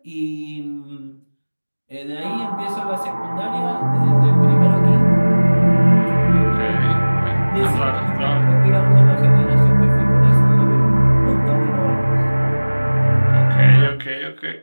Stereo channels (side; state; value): both; inverted; correlation -1.00